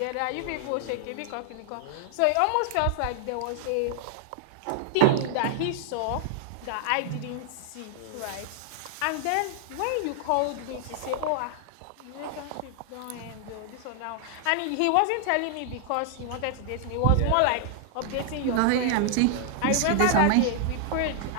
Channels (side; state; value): both; different; correlation -0.01